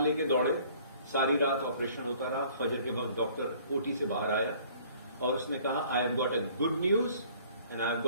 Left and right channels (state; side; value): inverted; both; correlation -0.55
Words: لے کے دوڑے، ساری رات آپریشن ہوتا رہا. فجر کے وقت ڈاکٹر اوٹی سے باہر آیا اور اس نے کہا I have got a good news and I have